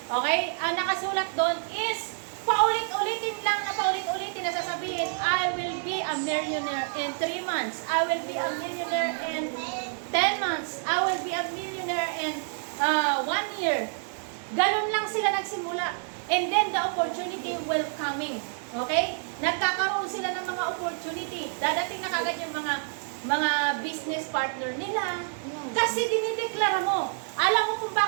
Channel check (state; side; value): silent; left; 59 dB below the other